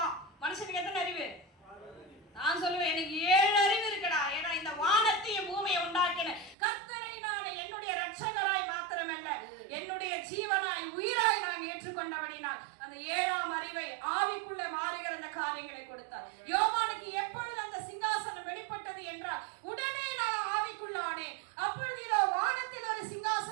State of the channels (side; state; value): left; drops out; at 6.6 s